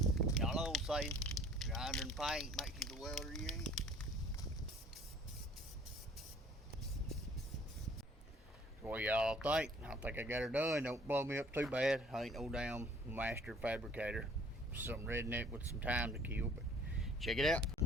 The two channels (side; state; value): both; normal; correlation 0.54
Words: Y'all know what I'm saying, grinder and paint makes you the welder you ain't. What y'all think? I think I got her done. Don't blow me up too bad. I ain't no damn master fabricator. Some redneck with some time to kill, but check it out.